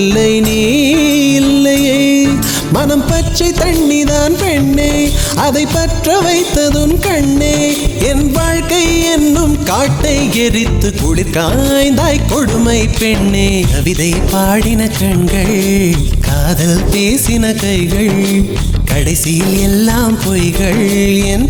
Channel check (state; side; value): identical; both; correlation 1.00